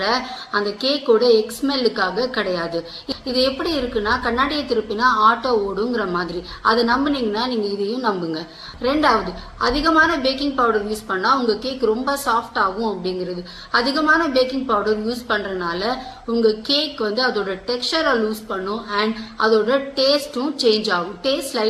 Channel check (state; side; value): identical; both; correlation 1.00